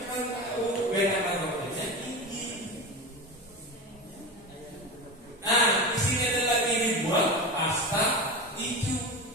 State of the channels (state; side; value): normal; both; correlation 0.24